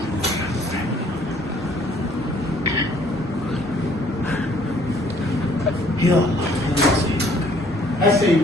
يا الله. هسه يجي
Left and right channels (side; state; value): both; normal; correlation 0.60